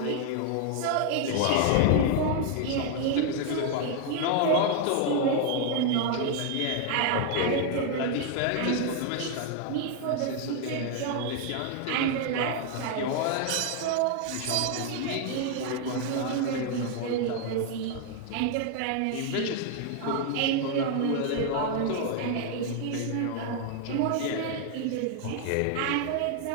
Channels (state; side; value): different; both; correlation 0.00